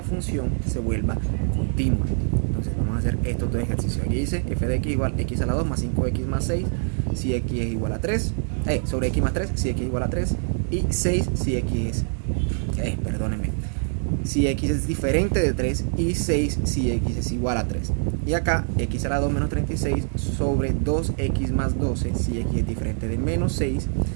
se vuelva continua. Entonces vamos a hacer estos dos ejercicios. Aquí dice f de x igual x a la 2 más 5x más 6 si x es igual a 3, sobre x más 3 si x es igual a 3, y 6 si x es, si x es diferente de 3, y 6 si x es igual a 3. Y acá x a la 2 menos 36 sobre 2x más 12 si x es diferente de menos 6,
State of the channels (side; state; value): left; silent; 62 dB below the other